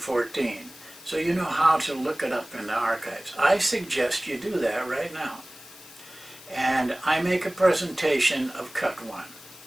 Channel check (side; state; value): left; noise; hiss, 19 dB below the sound